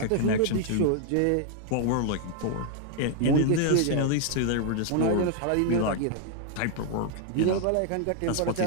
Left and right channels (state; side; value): different; both; correlation 0.00